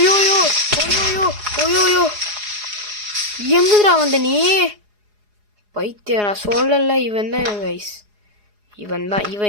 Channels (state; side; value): late; left; 4.8 ms